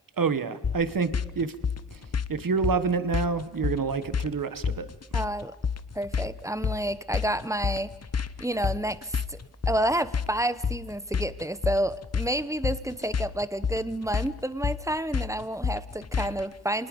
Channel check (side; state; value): both; normal; correlation 0.52